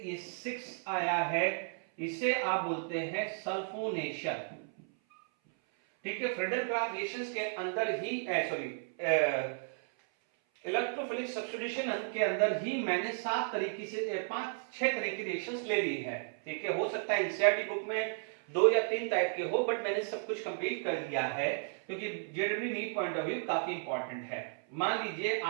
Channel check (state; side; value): silent; left; 55 dB below the other